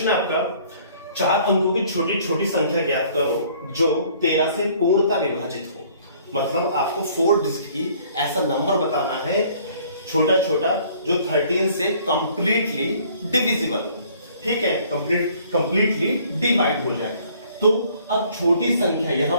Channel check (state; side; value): inverted; both; correlation -0.57